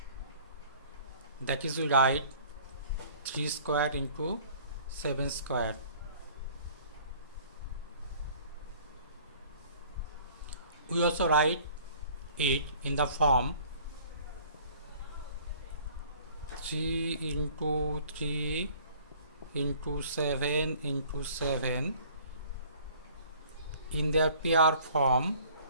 That is, we write 3 square into 7 square. We also write it in the form 3 into 3 into 7 into 7 in their pair form.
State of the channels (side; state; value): both; inverted; correlation -0.52